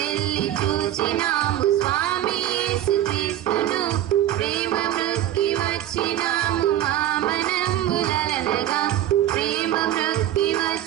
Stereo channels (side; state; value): left; quieter; 12.4 dB